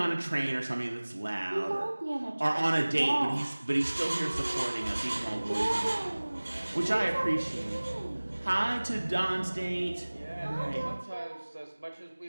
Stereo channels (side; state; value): both; inverted; correlation -1.00